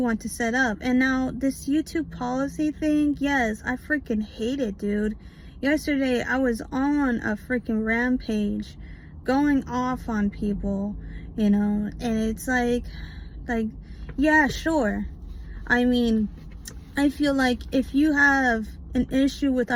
want to set up. And now this YouTube policy thing, yes, I freaking hate it, dude. Yesterday I was on a freaking rampage, going off on people, and it's like, yeah, sure. I mean, I feel like if you have an issue with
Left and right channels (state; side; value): identical; both; correlation 1.00